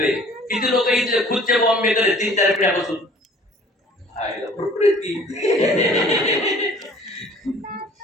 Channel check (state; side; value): normal; both; correlation 0.52